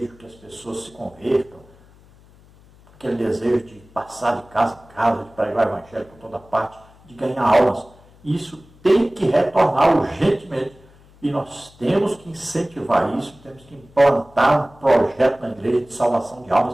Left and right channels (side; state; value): left; noise; hum, 26 dB below the sound